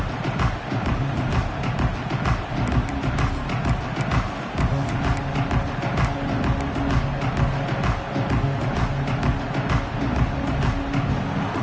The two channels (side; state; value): both; identical; correlation 1.00